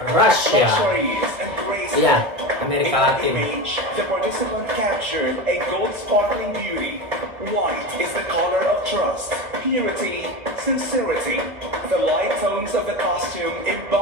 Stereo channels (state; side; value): late; left; 1.7 ms